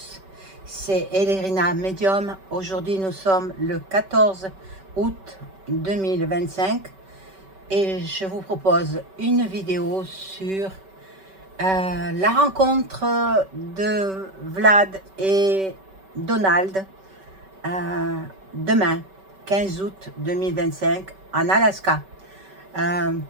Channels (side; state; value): left; late; 5.2 ms